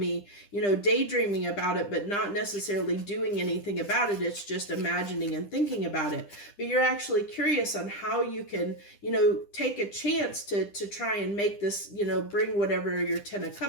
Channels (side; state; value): right; late; 10 ms